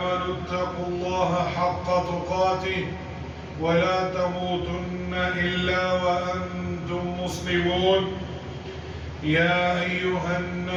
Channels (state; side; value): identical; both; correlation 1.00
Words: اتقوا الله حق تقاته ولا تموتن إلا وأنتم مسلمون يا أيها